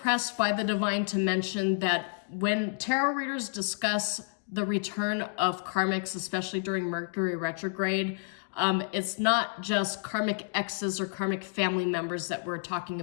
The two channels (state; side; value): silent; right; digital silence